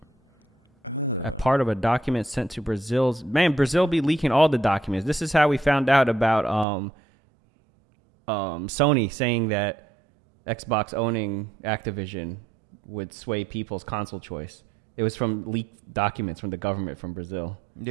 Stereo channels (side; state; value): left; drops out; at 6.7 s